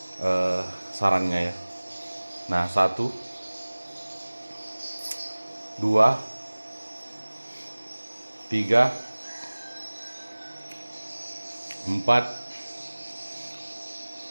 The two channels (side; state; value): both; inverted; correlation -1.00